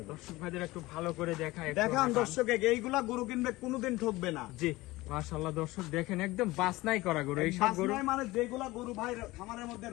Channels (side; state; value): right; quieter; 19.8 dB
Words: দর্শক ভাইদের একটু ভালো করে দেখায়। দেখান দর্শকে, এইগুলা গরু কিনবে কোনোদিন ঠকবে না। জি। মাশাআল্লাহ দর্শক দেখেন, একদম বাছনাই করা গরু এই সব গরু। বাছনাই মানে যেগুলা গরু ভাই খামারের মধ্যে